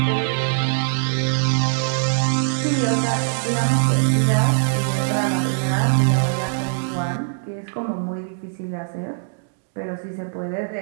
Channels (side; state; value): left; silent; digital silence